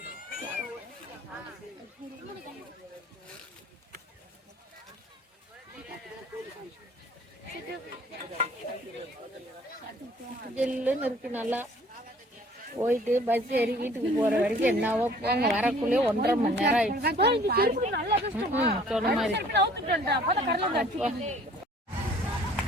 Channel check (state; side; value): normal; both; correlation 0.54